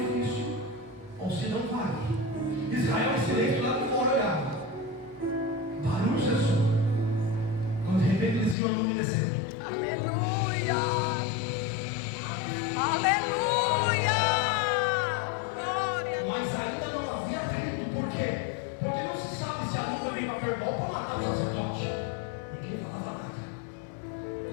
ou se não vai. Israel em silêncio lá de fora olhava. Barulho cessou. Quando de repente eles viam a nuvem descendo. Aleluia. Aleluia. Glória a Deus. Mas ainda não havia atrito. Por quê? Porque não se sabe se a nuvem veio para verbal para matar o sacerdote. Ninguém falava nada.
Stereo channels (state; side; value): drops out; right; at 8.6 s